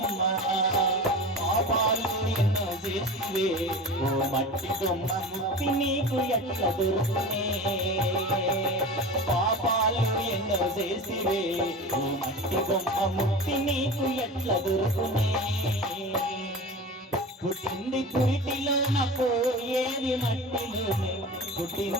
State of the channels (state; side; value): normal; both; correlation 0.32